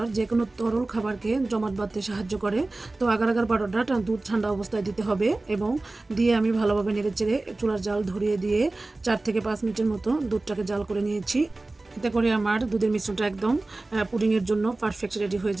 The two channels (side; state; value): left; quieter; 3.1 dB